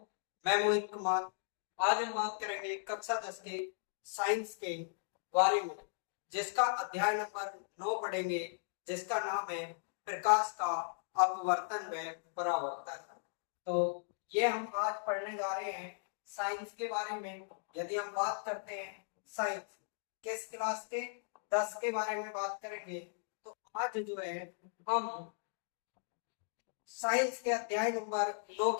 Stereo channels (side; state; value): right; silent; digital silence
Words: मैं मोहित कुमार। आज हम बात करेंगे कक्षा 10 के साइंस के बारे में, जिसका अध्याय नंबर 9 पढ़ेंगे, जिसका नाम है प्रकाश का अपवर्तन व परावर्तन। तो ये हम आज पढ़ने जा रहे हैं साइंस के बारे में। यदि हम बात करते हैं साइंस किस क्लास के 10 के बारे में बात करेंगे, तो आज जो है हम साइंस के अध्याय नंबर 2